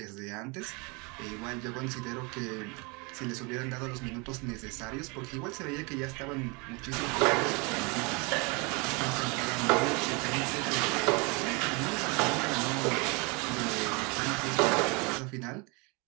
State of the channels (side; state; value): left; quieter; 29.7 dB